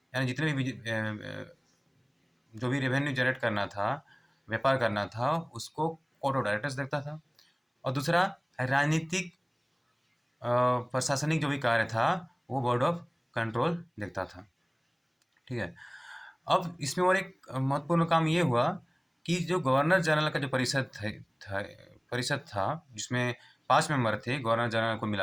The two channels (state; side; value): identical; both; correlation 1.00